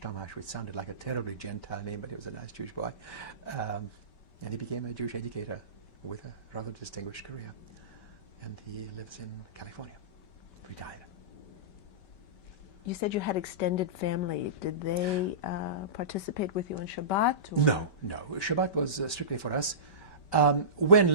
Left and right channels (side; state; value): right; late; 5.2 ms